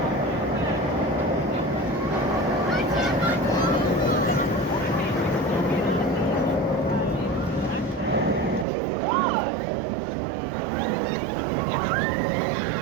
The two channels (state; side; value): drops out; left; at 8.7 s